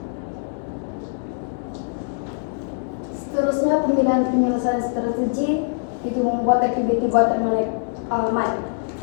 Seterusnya, pemilihan penyelesaian strategi itu membuat aktiviti buatan manik.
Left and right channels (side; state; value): right; silent; digital silence